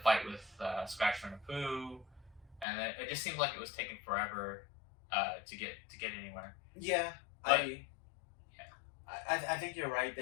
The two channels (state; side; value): drops out; right; at 2.7 s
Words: with Scratcher and Apu, and it just seemed like it was taking forever to get anywhere. Yeah, But, I think you're right